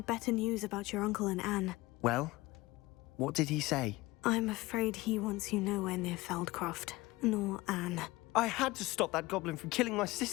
better news about your uncle and Anne. Well, what did he say? I'm afraid he wants you nowhere near Feldcroft, nor Anne. I had to stop that goblin from killing my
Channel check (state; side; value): quieter; right; 20.2 dB